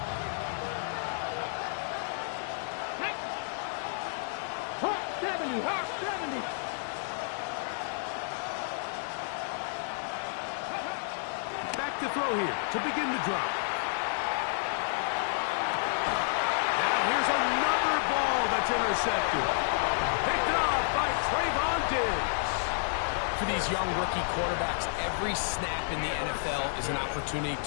To throw here to begin the drop. Now here's another ball that's intercepted. Picked off by Trayvon Diggs. For these young rookie quarterbacks, every snap in the NFL is an opportunity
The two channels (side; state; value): right; silent; digital silence